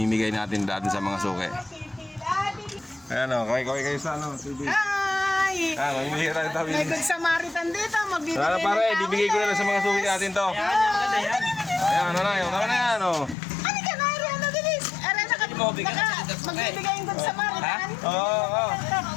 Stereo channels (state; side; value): drops out; right; at 13.4 s